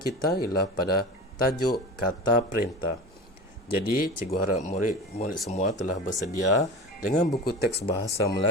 ialah pada tajuk kata perintah. Jadi, cikgu harap murid semua telah bersedia dengan buku teks Bahasa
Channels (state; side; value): normal; both; correlation 0.32